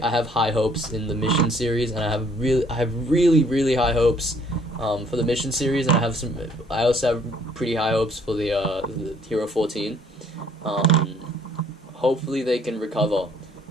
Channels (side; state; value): both; normal; correlation 0.62